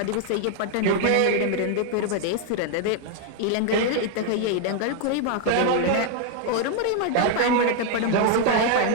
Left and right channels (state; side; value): different; both; correlation 0.00